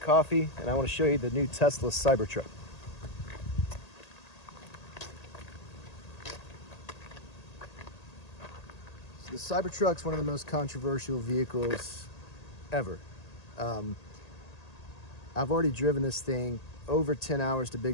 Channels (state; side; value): late; right; 1.8 ms